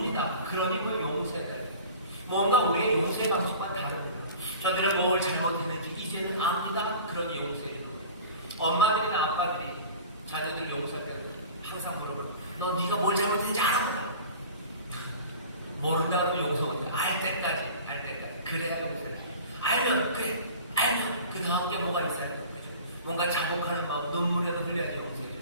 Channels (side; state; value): both; inverted; correlation -0.40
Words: 그러니 뭐 용서해야 돼요. 뭔가 우리의 용서의 방식과는 다릅니다. 저들은 뭘 잘못했는지 이제는 압니다. 그러니 용서해 주는 거예요. 엄마들이나 아빠들이 자녀들 용서할 때 항상 물어봐요. 너 네가 뭘 잘못했는지 알아? 모른다 그러면 용서 못해. 알 때까지. 그래야 용서해. 알면 그 다음 게 뭐가 있어야 돼요. 뭔가 자복하는 마음, 눈물에도 흘려야지 용서해줘.